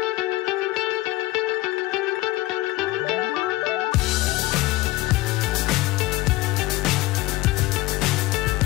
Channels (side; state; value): right; quieter; 19.0 dB